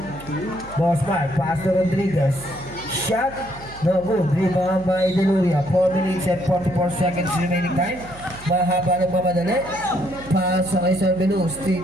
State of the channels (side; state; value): right; noise; hum, 18 dB below the sound